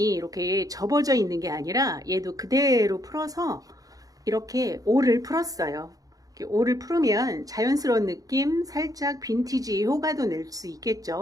이렇게 접어져 있는 게 아니라 얘도 그대로 풀어서 이렇게 올을 풀었어요. 이렇게 올을 풀으면 자연스러운 느낌, 살짝 빈티지 효과도 낼 수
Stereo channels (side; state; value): left; late; 0.17 ms